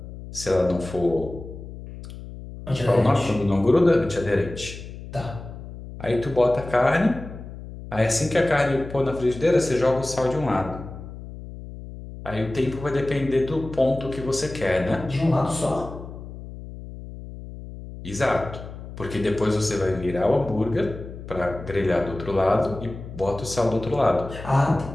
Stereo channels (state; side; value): noise; left; hum, 12 dB below the sound